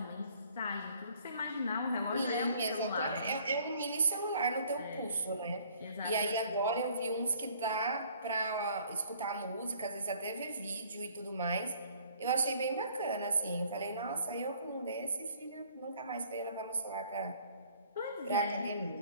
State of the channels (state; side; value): inverted; both; correlation -0.57